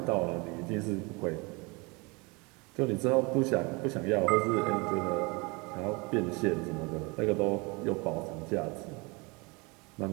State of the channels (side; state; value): left; quieter; 27.7 dB